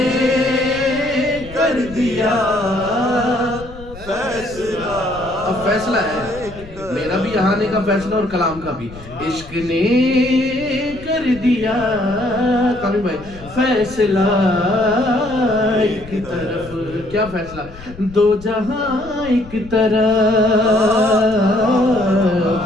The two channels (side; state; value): left; noise; rumble, 17 dB below the sound